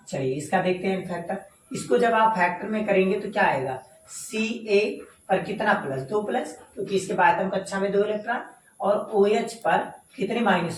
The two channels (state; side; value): identical; both; correlation 1.00